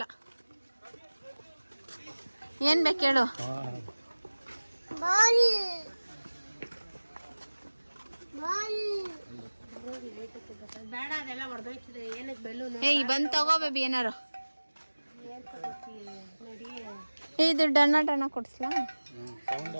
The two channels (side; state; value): both; inverted; correlation -1.00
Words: ಏನ್ ಬೇಕು ಹೇಳು. ಬೇಡ ಅದೆಲ್ಲ ಹೊಡೆದೋಯ್ತದೆ. ಏನಕ್ಕೆ ಬೆಲೂನು? ಬಂದ್ ತಗೋ ಬೇಬಿ ಏನಾರು. ಇದು ಡಣ್ಣ ಕೊಡ್ಸ್ಲಾ?